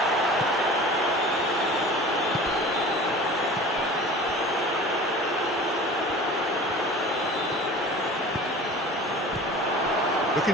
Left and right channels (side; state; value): both; normal; correlation 0.40